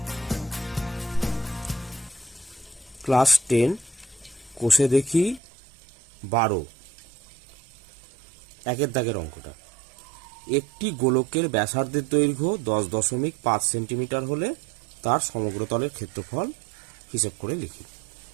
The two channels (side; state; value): left; drops out; at 5.4 s